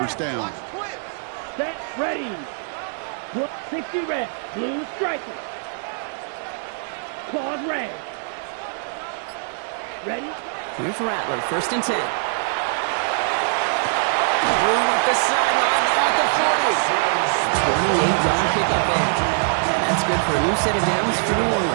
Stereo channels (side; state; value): left; silent; 61 dB below the other